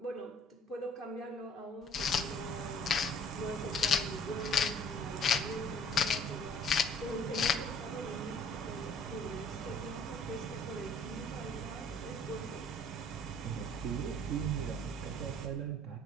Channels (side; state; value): both; normal; correlation 0.55